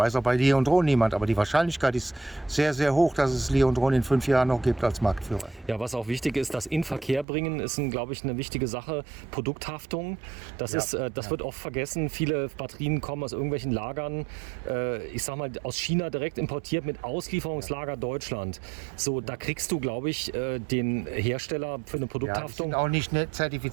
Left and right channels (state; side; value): drops out; left; at 7.2 s